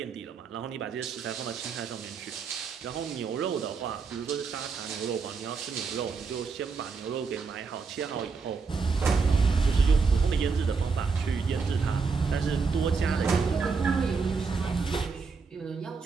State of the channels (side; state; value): left; quieter; 4.9 dB